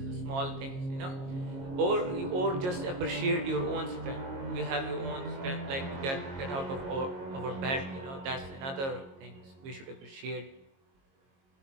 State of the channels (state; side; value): late; left; 22 ms